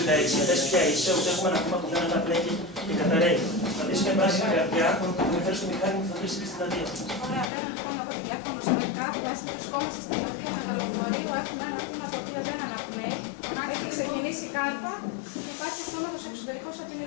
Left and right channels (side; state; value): right; drops out; at 7.5 s